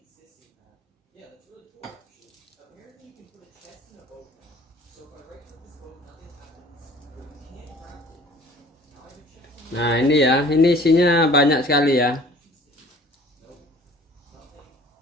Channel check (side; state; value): both; normal; correlation 0.50